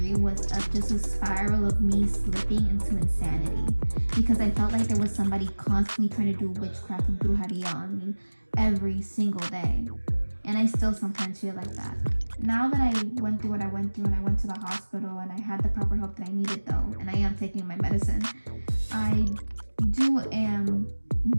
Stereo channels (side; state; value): both; inverted; correlation -1.00